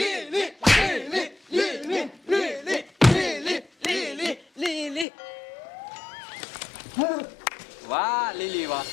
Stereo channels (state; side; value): drops out; right; at 5.1 s